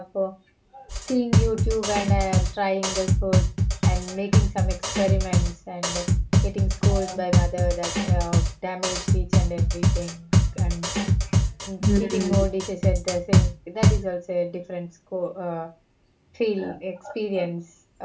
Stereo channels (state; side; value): identical; both; correlation 1.00